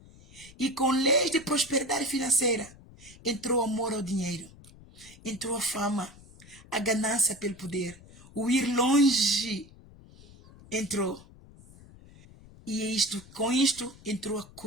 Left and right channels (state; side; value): noise; left; rumble, 22 dB below the sound